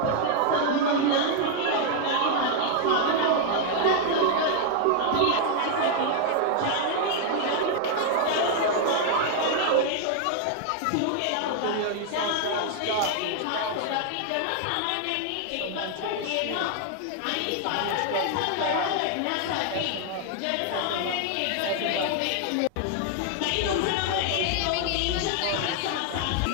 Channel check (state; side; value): different; both; correlation 0.00